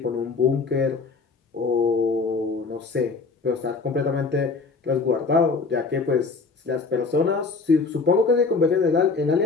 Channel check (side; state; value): right; quieter; 4.4 dB